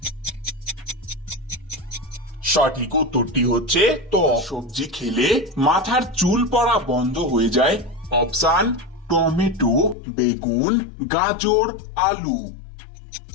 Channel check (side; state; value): right; drops out; at 10.0 s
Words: সঠিক উত্তরটি হচ্ছে ত্বক। সবজি খেলে মাথার চুল পড়া বন্ধ হয়ে যায়? অপশান: টমেটো, বেগুন, গাজর, আলু।